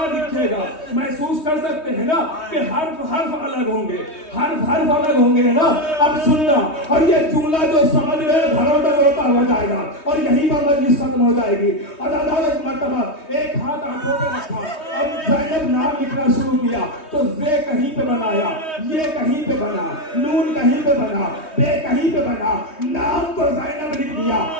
लिखेगा? महसूस कर सकते हैं ना कि हर्फ हर्फ अलग होंगे, हर्फ हर्फ अलग होंगे ना। अब सुनना, और ये जुमला जो समझ रहे घरों तक होता हो जाएगा और यहीं पर मजलिस खत्म हो जाएगी। और दादा एक मर्तबा एक हाथ आंखों पे रखा, अब ज़ैनब नाम लिखना शुरू किया तो जे कहीं पे बनाया, ये कहीं पे बना, नून कहीं पे बना, बे कहीं पे बना, नाम तो ज़ैनब लिख दिया।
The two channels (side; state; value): right; late; 3.2 ms